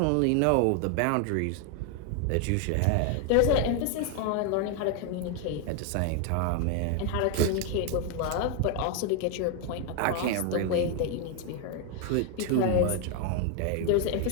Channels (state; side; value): different; both; correlation 0.01